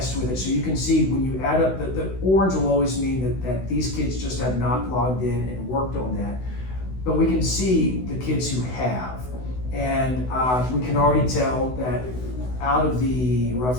with it. So you can see when you add up, the orange will always mean that these kids just have not logged in and worked on that. But we can see the kids who have. And we can already tell that out of the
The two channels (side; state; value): right; late; 16 ms